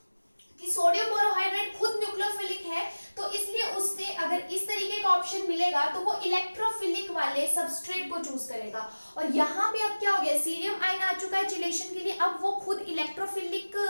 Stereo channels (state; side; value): inverted; both; correlation -1.00